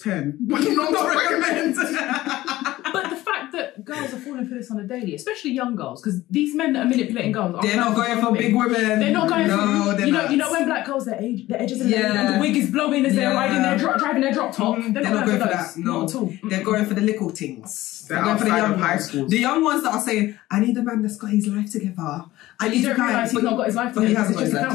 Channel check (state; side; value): quieter; right; 16.6 dB